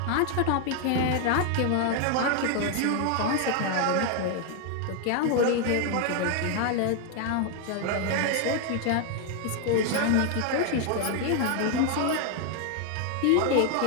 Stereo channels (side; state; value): both; different; correlation 0.01